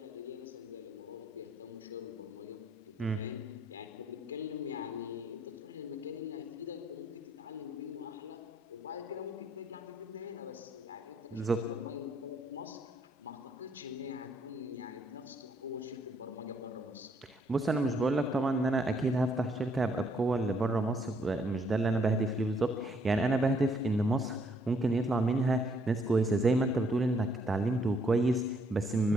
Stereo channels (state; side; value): normal; both; correlation 0.68